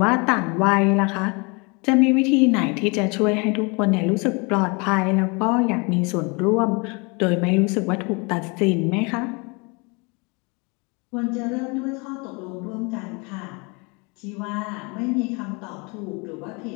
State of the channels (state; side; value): quieter; right; 30.1 dB